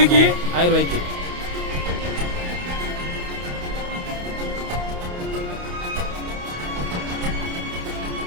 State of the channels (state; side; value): late; left; 28 ms